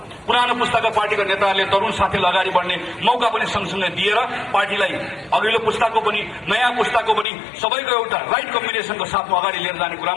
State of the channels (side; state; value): right; drops out; at 7.2 s